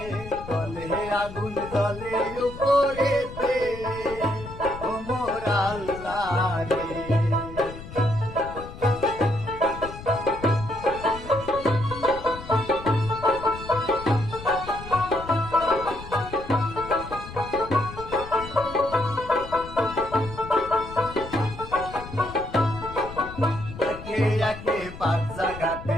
তলে আগুন জ্বলে উপরেতে ও মোর আল্লাহ রে। পাঁচ জায়গাতে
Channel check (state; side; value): noise; left; rumble, 13 dB below the sound